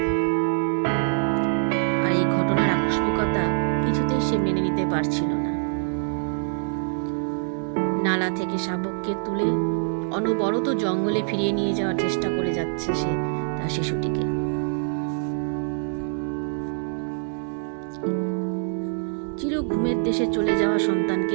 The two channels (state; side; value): silent; left; 62 dB below the other